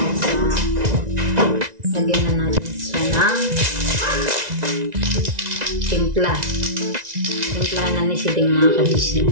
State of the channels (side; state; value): left; late; 1.9 ms